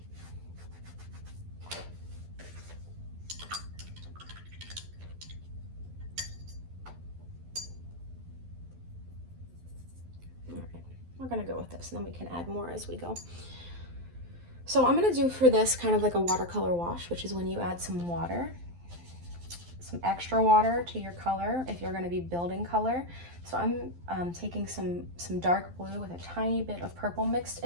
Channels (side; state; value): left; late; 12 ms